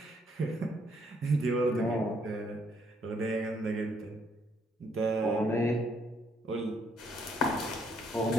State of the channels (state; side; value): normal; both; correlation 0.69